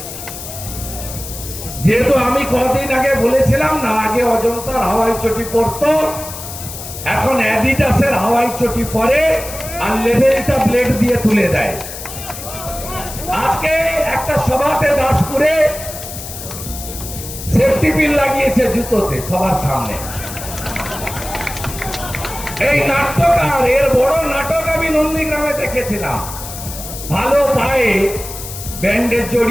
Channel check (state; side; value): noise; left; hiss, 10 dB below the sound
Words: যেহেতু আমি কদিন আগে বলেছিলাম না, আগে অজন্তার হাওয়াই চটি পরতো, এখন অ্যাডিডাসের হাওয়াই চটি পরে আর লেভেলটা ব্লেড দিয়ে তুলে দেয়। আজকে একটা সভাতে দাসপুরে সেফটি পিন লাগিয়েছে জুতোতে সবার সামনে। এই নাট্যকার, এর বড় নাটক আমি নন্দীগ্রামে দেখেছিলাম। ভালো পায়ে ব্যান্ডেজ